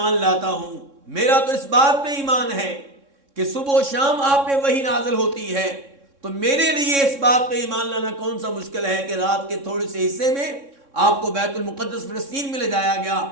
لاتا ہوں، میرا تو اس بات پہ ایمان ہے کہ صبح و شام آپ پہ وحی نازل ہوتی ہے، تو میرے لیے اس بات پہ ایمان لانا کون سا مشکل ہے کہ رات کے تھوڑے سے حصے میں آپ کو بیت المقدس فلسطین میں لے جایا گیا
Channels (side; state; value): left; late; 3.6 ms